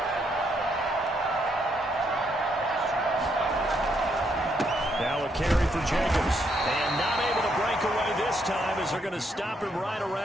Now a carry for Jacobs. And not able to break away this time as they're going to stop him right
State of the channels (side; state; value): both; normal; correlation 0.75